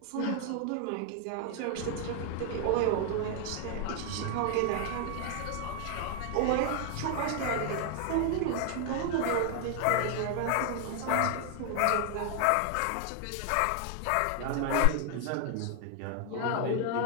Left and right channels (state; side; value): different; both; correlation 0.00